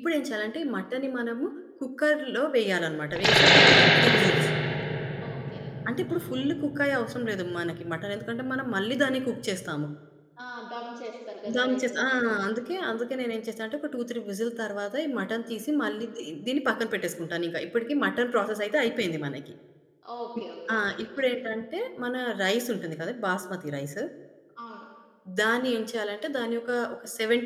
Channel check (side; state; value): both; identical; correlation 1.00